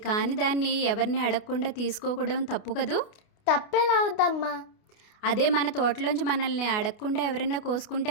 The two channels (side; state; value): right; late; 28 ms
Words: కాని దాన్ని ఎవరిని అడగకుండా తీసుకోవడం తప్పు కదూ. తప్పేలా అవుద్దమ్మా? అదే మన తోటలోంచి మనల్ని అడగకుండా ఎవరైనా కోసుకుంటే